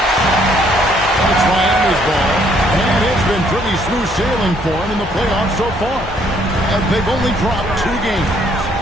It's Miami's ball. And it's been pretty smooth sailing for them in the playoffs so far. And they've only dropped 2 games.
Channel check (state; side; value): normal; both; correlation 0.66